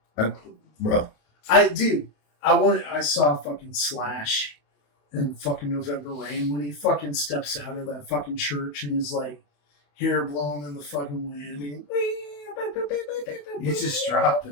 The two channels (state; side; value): late; right; 28 ms